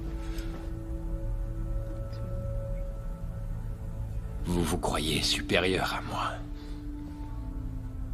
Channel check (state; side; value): identical; both; correlation 1.00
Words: Vous vous croyez supérieure à moi.